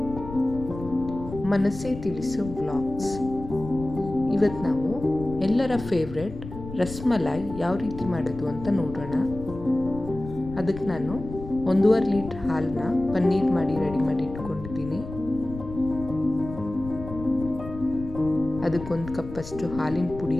ಮನಸ್ಸೇ ತಿಳಿಸೋ ವ್ಲಾಗ್ಸ್. ಇವತ್ತು ನಾವು ಎಲ್ಲರ ಫೇವ್ರೆಟ್ ರಸ್ಮಲಾಯ್ ಯಾವ ರೀತಿ ಮಾಡೋದು ಅಂತ ನೋಡೋಣ. ಅದಕ್ಕೆ ನಾನು 1.5 ಲೀಟ್ರ್ ಹಾಲನ್ನ ಪನ್ನೀರ್ ಮಾಡಿ ರೆಡಿ ಮಾಡಿ ಇಟ್ಕೊಂಡಿದ್ದೀನಿ. ಅದಕ್ಕೆ 1 ಕಪ್ಪಷ್ಟು ಹಾಲಿನ ಪುಡಿ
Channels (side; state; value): left; noise; rumble, 12 dB below the sound